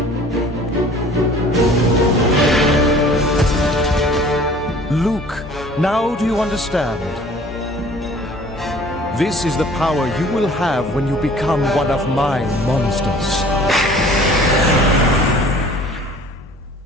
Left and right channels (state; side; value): normal; both; correlation 0.49